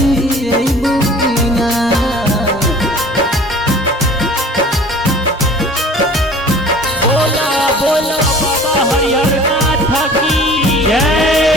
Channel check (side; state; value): both; normal; correlation 0.45